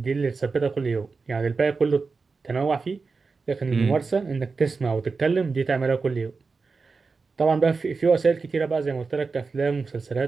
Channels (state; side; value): quieter; left; 4.5 dB